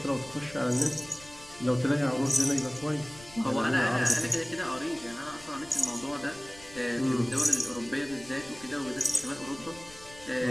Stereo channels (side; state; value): left; noise; rumble, 21 dB below the sound